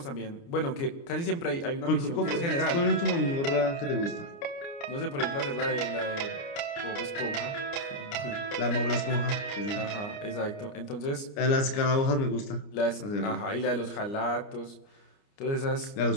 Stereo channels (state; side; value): late; right; 29 ms